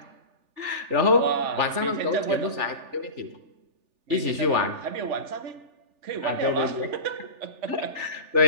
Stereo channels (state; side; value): late; left; 3.4 ms